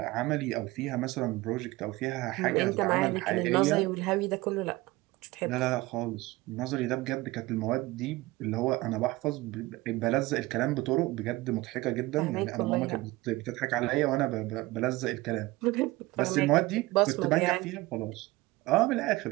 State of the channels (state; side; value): quieter; left; 20.4 dB